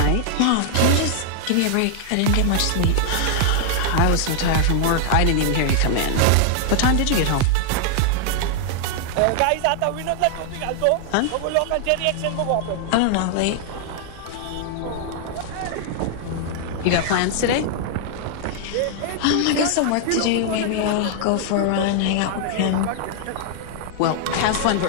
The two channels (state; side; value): different; both; correlation 0.00